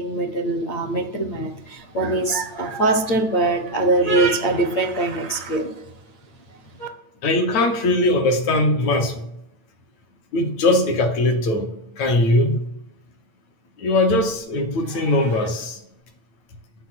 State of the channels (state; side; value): late; right; 8.9 ms